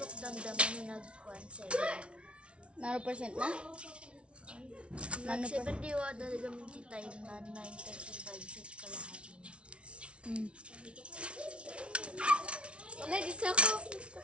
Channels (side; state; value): left; late; 0.059 ms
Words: damdaman na nag-1 7. Nano percent na? Nano pa? Nag-7 diwa talaga minti tayo na 9:35 set kalahati na. Wala, di sa ako.